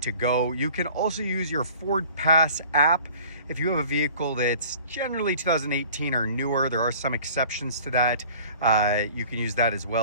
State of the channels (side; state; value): both; inverted; correlation -0.47